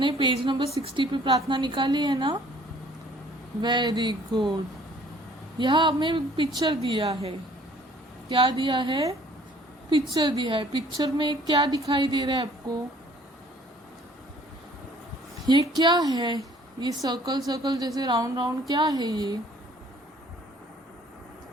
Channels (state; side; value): normal; both; correlation 0.56